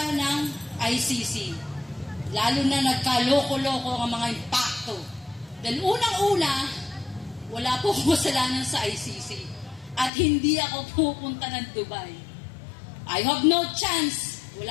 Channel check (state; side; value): drops out; right; at 10.1 s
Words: ng ICC. Lalo na nagkaloko-loko ang mga impacto. Dahil unang-una, wala po kasalanan sa ICC at hindi ako pupunta ng Dubai. I have no chance.